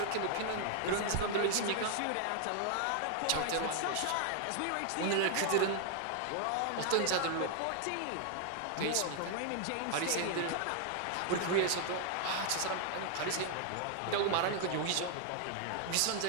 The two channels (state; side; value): different; both; correlation 0.00